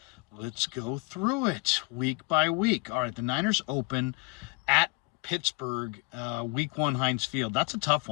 Let's go through it week by week. All right, the Niners open at Pittsburgh, week one, Heinz Field. That's a tough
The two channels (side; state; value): right; quieter; 29.3 dB